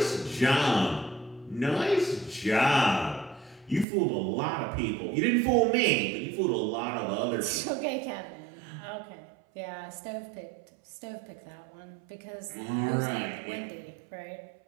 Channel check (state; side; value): drops out; left; at 3.9 s